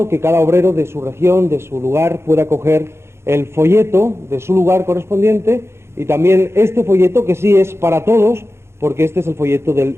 que cada obrero de su región, de su lugar, pueda coger el folleto de su lugar correspondiente y también este folleto que sí es para todos, porque este es el folleto del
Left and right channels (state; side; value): late; left; 0.12 ms